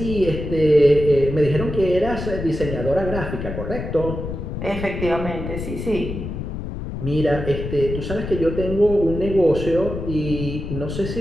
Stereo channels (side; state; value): left; noise; rumble, 6 dB below the sound